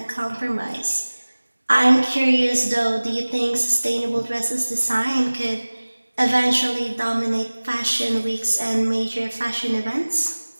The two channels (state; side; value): inverted; both; correlation -1.00